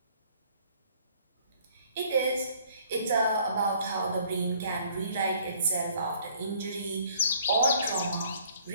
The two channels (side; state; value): both; inverted; correlation -0.58